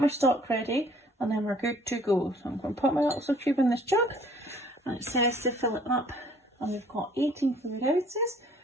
stock ready and then we're good to go. So I'm going to put my little cube in this jug and it says to fill it up. And we've got 18 fluid ounces,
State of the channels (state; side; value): normal; both; correlation 0.57